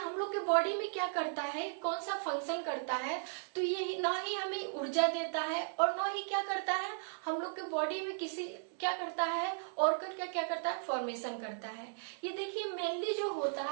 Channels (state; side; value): silent; left; digital silence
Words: लोग के बॉडी में क्या करता है, कौन सा फंक्शन करता है, तो ये ना ही हमें ऊर्जा देता है और ना ही क्या करता है हम लोग के बॉडी में किसी क्या करता है ऑर्गन का क्या करता है, फॉर्मेशन करता है। ये देखिए मेनली जो होता